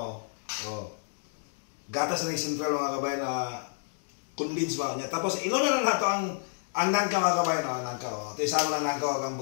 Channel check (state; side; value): silent; right; digital silence